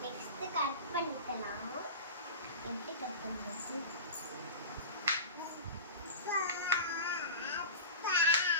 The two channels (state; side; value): inverted; both; correlation -0.30